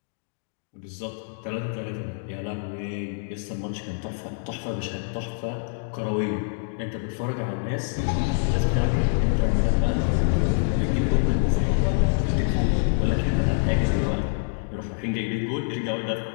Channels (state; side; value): silent; right; digital silence